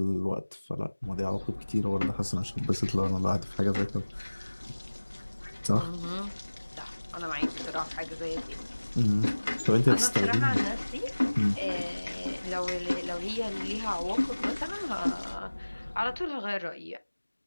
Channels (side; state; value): both; inverted; correlation -1.00